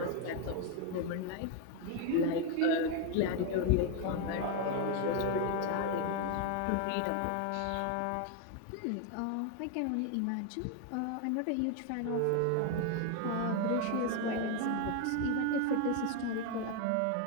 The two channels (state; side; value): different; both; correlation 0.01